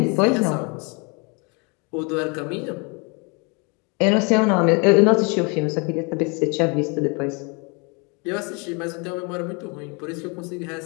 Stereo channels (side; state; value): right; quieter; 31.6 dB